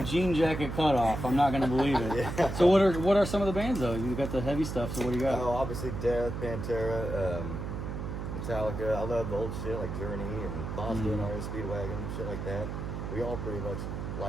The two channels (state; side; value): noise; right; hum, 5 dB below the sound